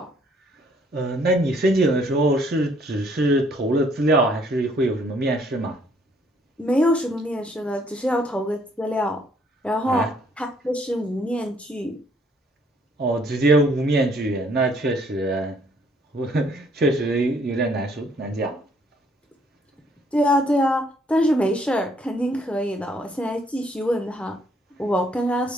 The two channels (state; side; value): normal; both; correlation 0.65